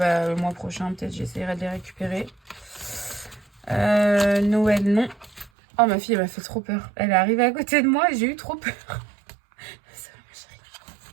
mois prochain, peut-être, j'essaierai de les récupérer. Noël, non. Oh, ma fille, elle m'a fait trop peur. Elle est arrivée à côté de moi et j'ai eu trop peur.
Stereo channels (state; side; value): drops out; left; at 5.5 s